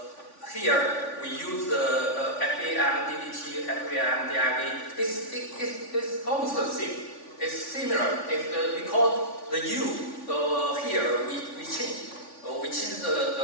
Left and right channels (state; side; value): late; right; 3.5 ms